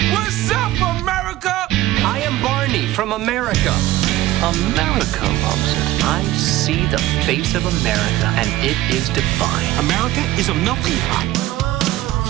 What's up, America? I am Barney from America. America loves it. I see the face of America, and it is divine. America is a melting pot.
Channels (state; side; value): quieter; left; 15.8 dB